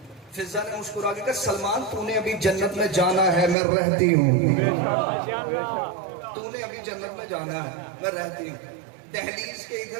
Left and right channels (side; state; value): left; drops out; at 3.6 s